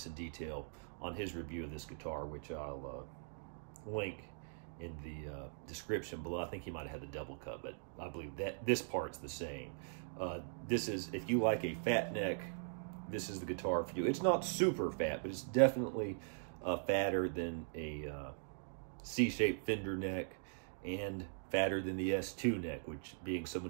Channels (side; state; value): left; silent; digital silence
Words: in detail on his review of this guitar, which I'll link in the description below. I think he might have had the double cut, but I believe that this part's the same. This is, if you like a fat neck, this is the guitar for you. It's not super fat, but it's definitely fatter than a C-shaped Fender neck and fatter than the S2 neck, which, being